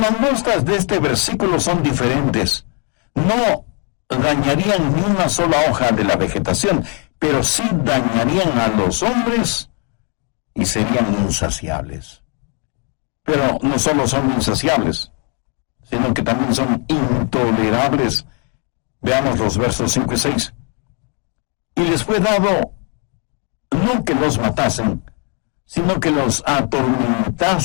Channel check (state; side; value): quieter; right; 37.7 dB